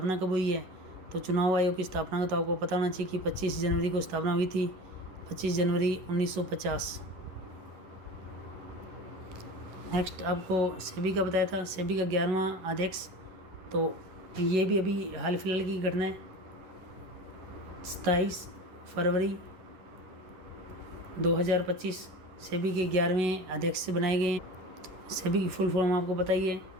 कब हुई है, तो चुनाव आयोग की स्थापना को तो आपको पता होना चाहिए कि 25 जनवरी को स्थापना हुई थी, 25 जनवरी 1950। नेक्स्ट आपको सेबी का बताया था, सेबी का 11वां अध्यक्ष। तो ये भी अभी हाल फिलहाल की घटना है, 27 फरवरी 2025 सेबी के 11वें अध्यक्ष बनाए गए हैं। सेबी की फुल फॉर्म आपको पता ही है,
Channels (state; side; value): late; left; 11 ms